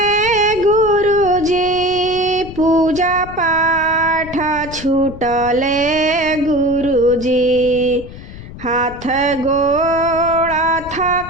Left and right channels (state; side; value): noise; left; rumble, 14 dB below the sound